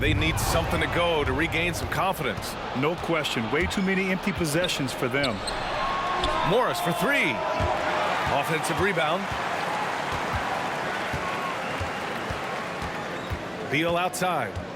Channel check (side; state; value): both; identical; correlation 1.00